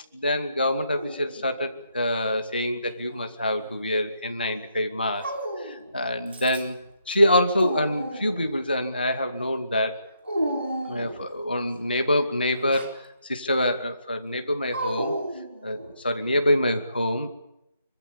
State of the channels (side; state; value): both; inverted; correlation -0.76